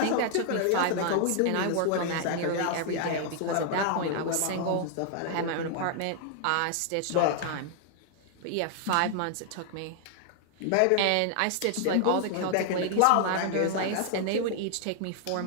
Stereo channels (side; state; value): both; different; correlation 0.00